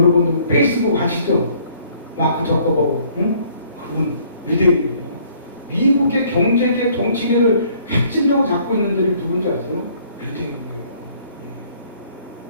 페이스북 아시죠? 마크 저커버그 그분 유대인이에요. 미국의 경제계 정치계를 핵심적으로 잡고 있는 들이 누군지 아세요? 유대인이에요.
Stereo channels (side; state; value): both; inverted; correlation -0.61